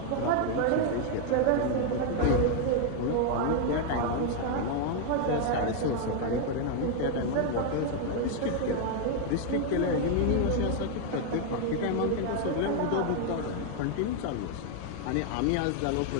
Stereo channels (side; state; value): both; different; correlation 0.00